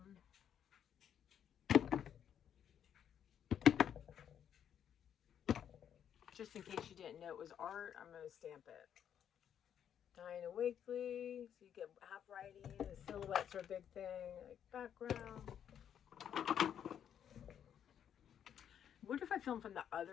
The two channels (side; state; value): right; quieter; 9.1 dB